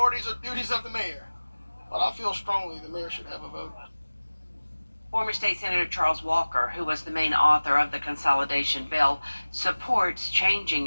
or duties of the mayor. But I feel strongly the mayor should have a vote. Former State Senator Charles Walker, who was the main author of the consolidation bill, supports changing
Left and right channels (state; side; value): inverted; both; correlation -1.00